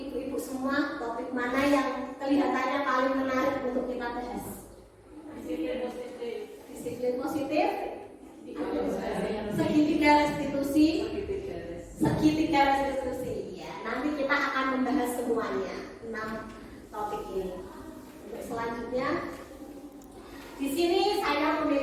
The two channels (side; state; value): both; identical; correlation 1.00